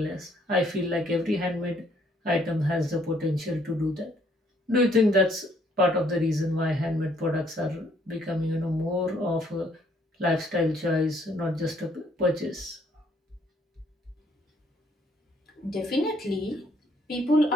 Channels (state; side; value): normal; both; correlation 0.66